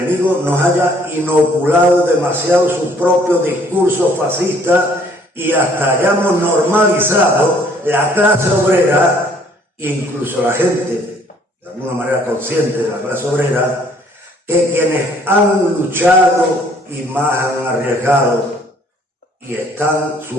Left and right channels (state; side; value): normal; both; correlation 0.61